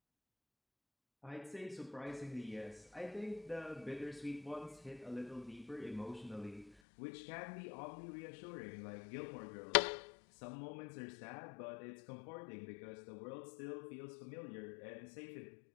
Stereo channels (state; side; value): drops out; right; at 6.7 s